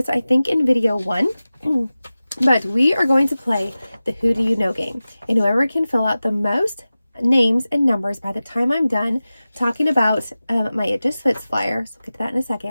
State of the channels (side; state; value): both; inverted; correlation -0.96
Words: I think, in video 1. But we are going to play the Who Do You Know game. And whoever can fill out the most names and numbers by the time I'm done talking about my It Just Fits flyer, so we'll get to that in a